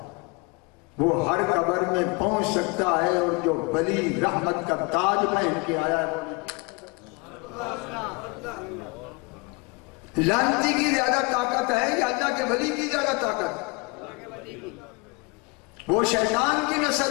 وہ ہر قبر میں پہنچ سکتا ہے، اور جو ولی رحمت کا تاج پہن کے آیا ہے وہ لعنتی کی زیادہ طاقت ہے یا اللہ کے ولی کی زیادہ طاقت؟ وہ شیطان کی نسل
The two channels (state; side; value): quieter; right; 28.6 dB